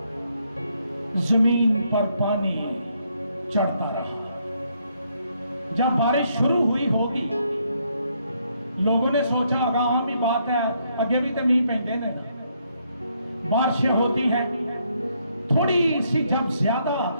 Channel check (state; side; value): inverted; both; correlation -0.73